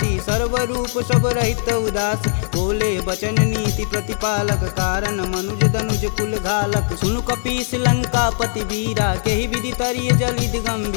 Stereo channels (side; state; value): right; silent; digital silence